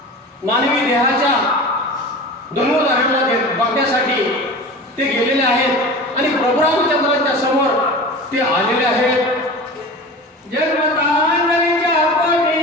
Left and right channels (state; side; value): normal; both; correlation 0.34